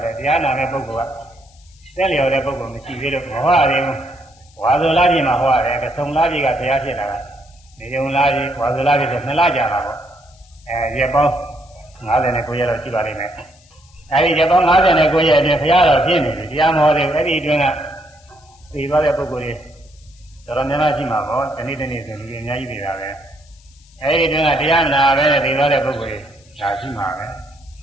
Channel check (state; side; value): noise; left; hiss, 29 dB below the sound